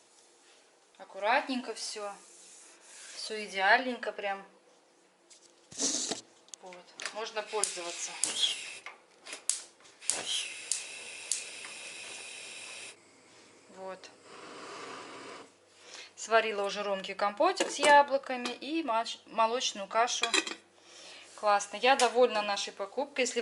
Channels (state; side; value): identical; both; correlation 1.00